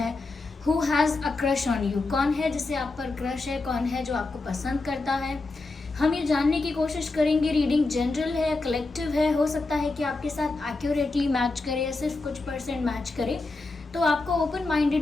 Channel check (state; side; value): quieter; right; 3.4 dB